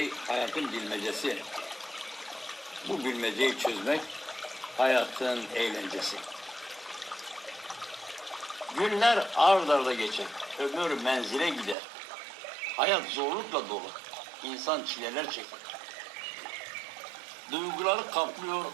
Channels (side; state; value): left; drops out; at 11.8 s